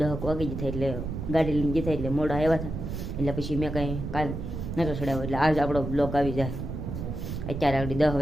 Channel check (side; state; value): right; noise; rumble, 5 dB below the sound